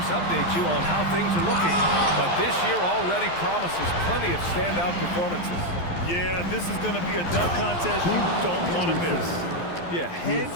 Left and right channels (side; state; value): right; late; 12 ms